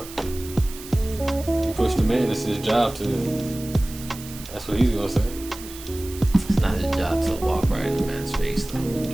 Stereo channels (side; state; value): right; noise; hiss, 15 dB below the sound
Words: You push the man. It's his job to. That's what he's gonna say. It's not his job to walk right in the man's face, though.